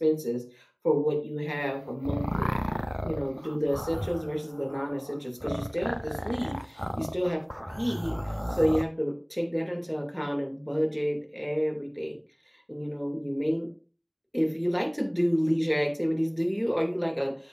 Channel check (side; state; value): both; identical; correlation 1.00